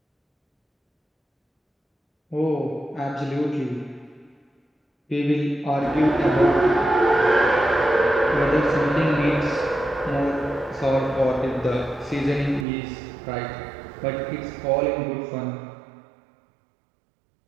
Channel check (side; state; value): left; drops out; at 12.7 s